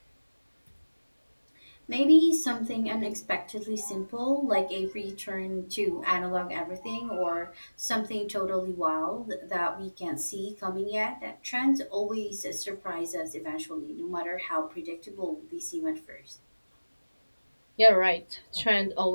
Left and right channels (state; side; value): inverted; both; correlation -1.00